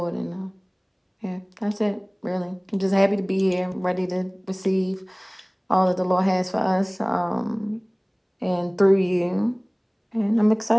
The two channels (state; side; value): identical; both; correlation 1.00